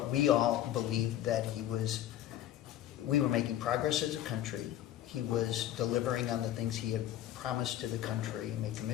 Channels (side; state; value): right; quieter; 12.5 dB